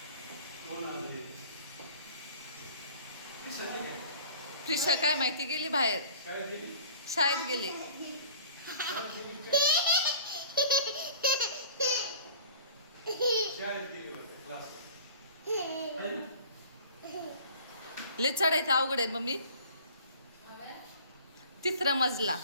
प्रिशा काय माहिती गेली बाहेर, शाळेत गेली. लय चढायचं अवघड आहे मम्मी. तिसरा मजला.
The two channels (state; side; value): inverted; both; correlation -0.45